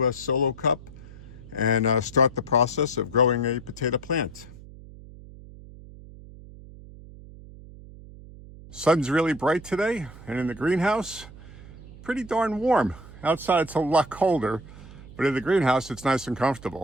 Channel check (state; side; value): noise; right; hum, 17 dB below the sound